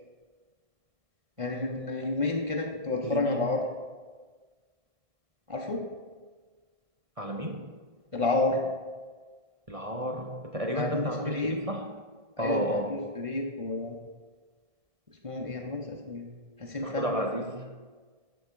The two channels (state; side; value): late; left; 1.5 ms